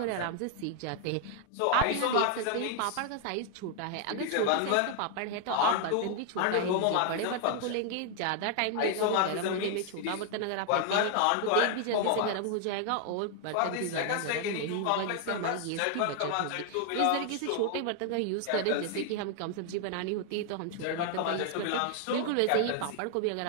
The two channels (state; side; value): different; both; correlation 0.00